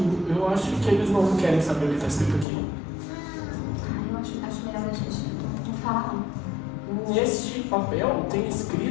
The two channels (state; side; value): drops out; right; at 2.5 s